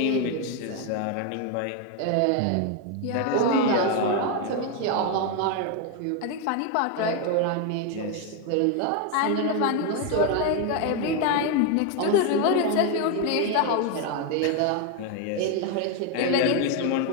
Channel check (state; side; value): different; both; correlation 0.01